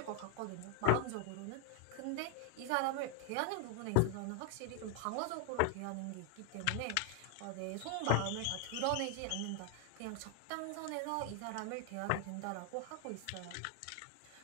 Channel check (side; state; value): both; different; correlation 0.00